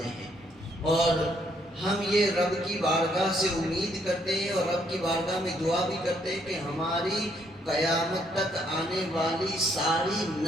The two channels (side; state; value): both; normal; correlation 0.71